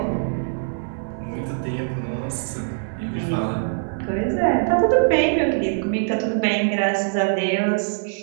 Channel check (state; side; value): silent; left; 58 dB below the other